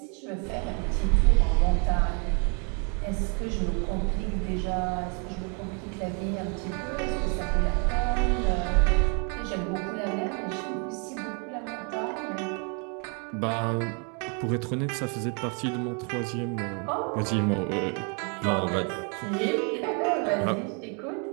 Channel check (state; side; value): quieter; left; 37.1 dB